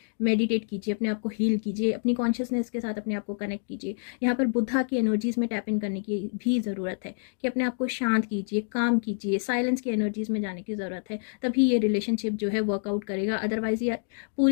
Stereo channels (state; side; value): silent; right; digital silence